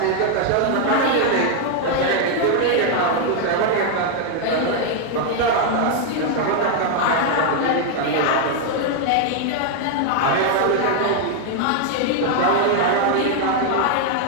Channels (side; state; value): both; different; correlation 0.00